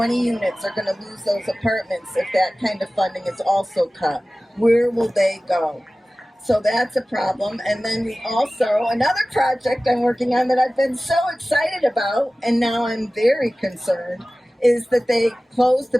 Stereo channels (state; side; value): normal; both; correlation 0.97